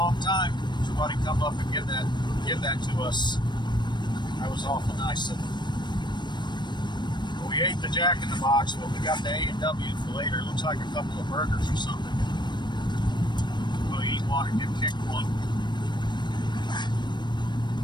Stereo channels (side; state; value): right; late; 0.22 ms